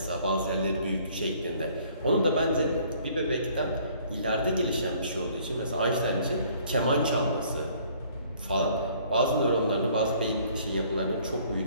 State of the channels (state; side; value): inverted; both; correlation -0.58